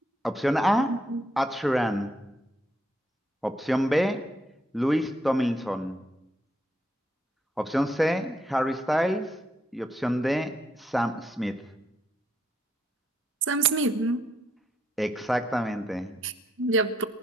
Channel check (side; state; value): both; normal; correlation 0.76